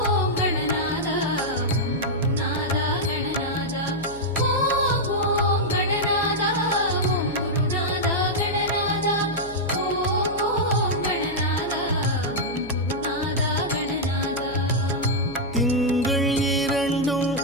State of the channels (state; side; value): noise; left; hum, 15 dB below the sound